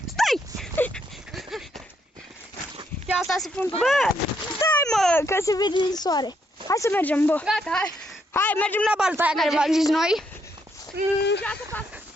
Bă, stai mă, că se vede din soare. Hai să mergem, bă. Gata, hai. Hai, mergem la balta aia care v-am zis noi.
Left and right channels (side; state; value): both; normal; correlation 0.75